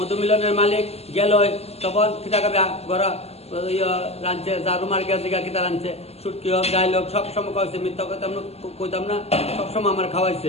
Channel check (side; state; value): right; late; 0.30 ms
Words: মালিক গেল, তখন খিদা খাবে গড়া রাঁধছে, জারু মার্কে দিঘা কিতা রাঁধছে, সুটকি হোক গাইল হোক সবসময় খাওয়াইছে, মিথ্যা কইতাম না, সবসময় আমার